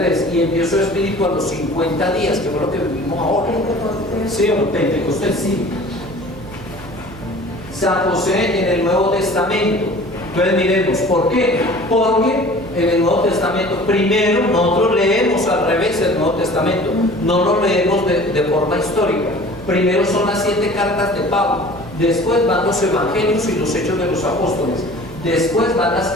y envió su espíritu a los 50 días, que fue lo que vivimos ahora. Sí, o Pentecostés, sí. San José en el Nuevo Testamento. Entonces miremos, ¿por qué? Porque en el Nuevo Testamento, primero nosotros leemos al revés el Nuevo Testamento, no lo leemos de forma histórica. Primero son las 7 cartas de Pablo, después van los evangelios y los hechos de los apóstoles, después van las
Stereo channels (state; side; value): noise; right; hum, 18 dB below the sound